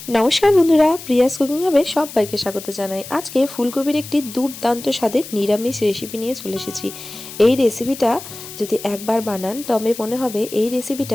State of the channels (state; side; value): noise; left; hiss, 13 dB below the sound